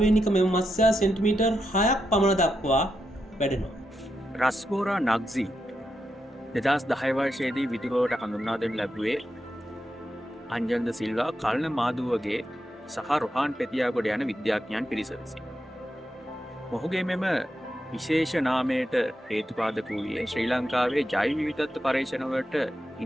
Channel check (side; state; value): both; normal; correlation 0.85